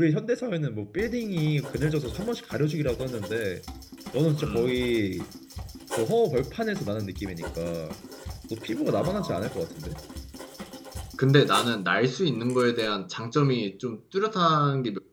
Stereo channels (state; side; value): identical; both; correlation 1.00